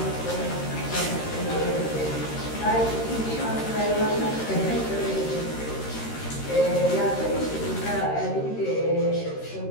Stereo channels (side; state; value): right; late; 13 ms